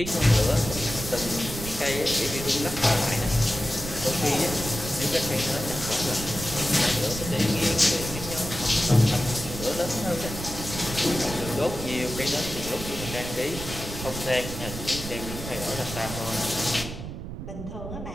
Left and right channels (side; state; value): right; noise; rumble, 8 dB below the sound